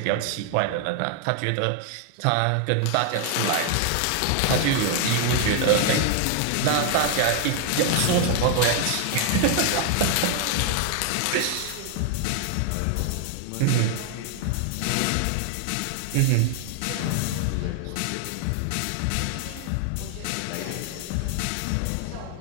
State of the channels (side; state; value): both; different; correlation 0.00